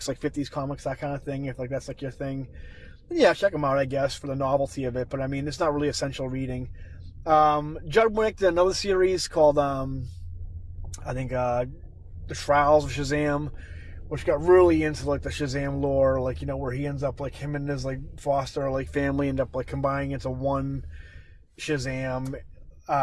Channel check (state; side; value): identical; both; correlation 1.00